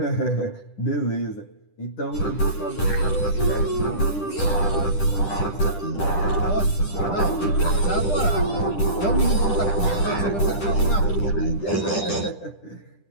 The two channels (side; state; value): right; late; 10 ms